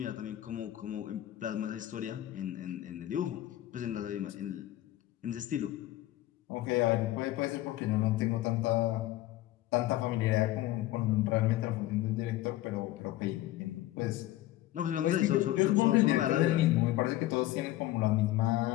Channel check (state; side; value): quieter; right; 15.3 dB